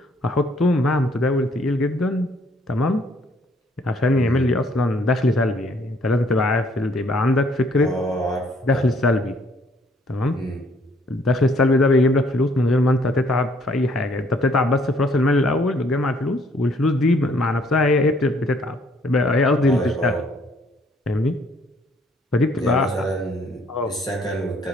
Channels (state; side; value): normal; both; correlation 0.64